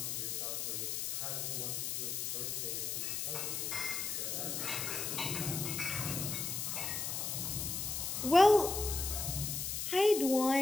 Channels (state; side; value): noise; left; hiss, 2 dB below the sound